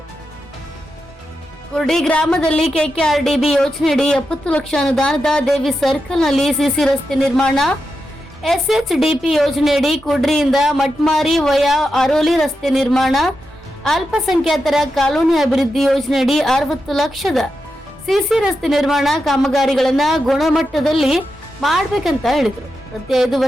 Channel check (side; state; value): both; normal; correlation 0.88